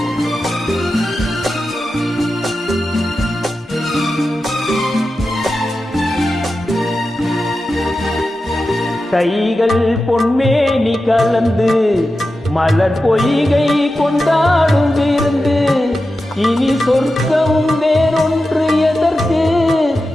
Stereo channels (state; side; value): normal; both; correlation 0.92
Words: கைகள் பொன்மேனி கலந்து மலர் பொய்கை கொண்டாடும் விருந்து. இனி சொர்க்கம் வேறொன்று எதற்கு,